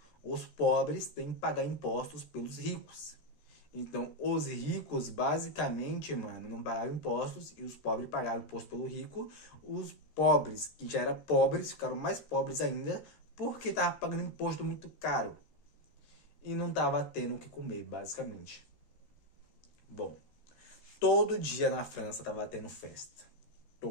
os pobres têm que pagar impostos pelos ricos. Então, os ricos, basicamente, mano, não pagaram impostos e os pobres pagaram imposto pelo rico. Os pobres, que já eram pobres, ficaram mais pobres ainda porque estavam pagando imposto muito caro. E não tava tendo o que comer, basicamente. Bom, todo dia na França tava tendo festa.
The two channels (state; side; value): late; right; 13 ms